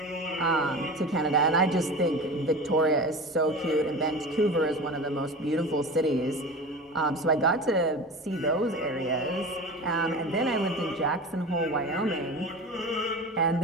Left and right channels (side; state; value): both; normal; correlation 0.32